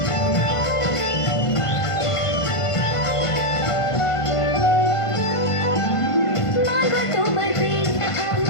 মাগো তোমার প্রেমটা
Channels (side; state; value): right; late; 1.5 ms